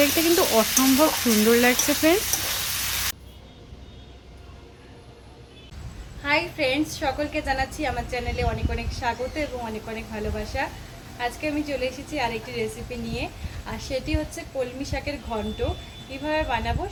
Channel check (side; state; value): both; identical; correlation 1.00